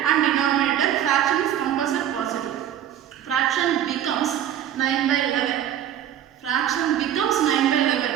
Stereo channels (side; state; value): left; quieter; 10.6 dB